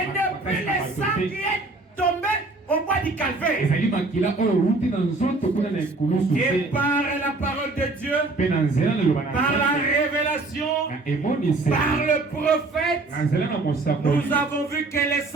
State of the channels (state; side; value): quieter; left; 3.3 dB